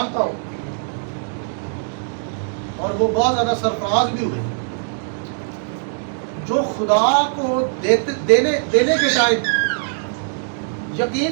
हूँ और वो बहुत ज्यादा सरफराज भी हुए, जो खुदा को देने के टाइम, यकीन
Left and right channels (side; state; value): left; silent; digital silence